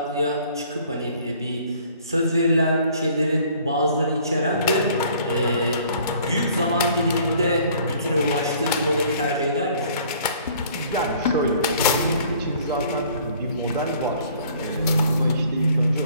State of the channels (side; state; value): both; inverted; correlation -0.56